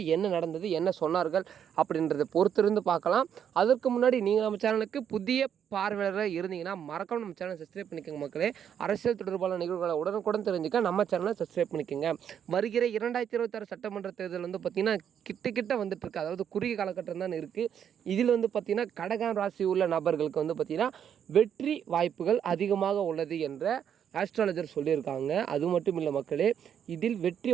என்ன நடந்தது, என்ன சொன்னார்கள் அப்படின்றத பொறுத்திருந்து பார்க்கலாம். அதற்கு முன்னாடி நீங்கள் நம்ம சேனலுக்கு புதிய பார்வையாளராக இருந்தீங்கன்னா மறக்காம நம்ம சேனலை சப்ஸ்கிரைப் பண்ணிக்கோங்க மக்களே. அரசியல் தொடர்பான நிகழ்வுகளை உடனுக்குடன் தெரிஞ்சுக்க நம்ம சேனலை சப்ஸ்கிரைப் பண்ணிக்கோங்க. வருகிற 2026 சட்டமன்ற தேர்தல் வந்து பார்த்திங்கன்னா கிட்ட வந்துட்டு இருக்கு. அதாவது குறுகிய காலகட்டம் தான் இருக்குது. இதில் வந்து பார்த்திங்கன்னா கடகம் ராசி உள்ள நபர்களுக்கு வந்து பார்த்திங்கன்னா வெற்றி வாய்ப்புகள் அதிகமாக உள்ளது என்ற ஆஸ்ட்ராலஜர் சொல்லியிருக்காங்க. அது மட்டும் இல்லை மக்களே, இதில் வெற்றி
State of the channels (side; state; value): left; quieter; 8.7 dB